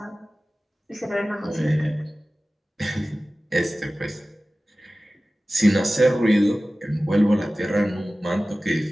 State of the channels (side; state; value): both; normal; correlation 0.97